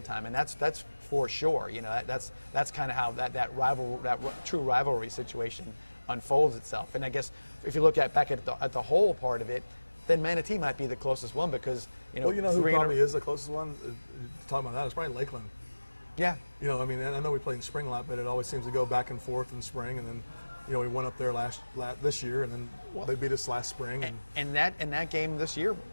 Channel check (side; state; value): both; inverted; correlation -1.00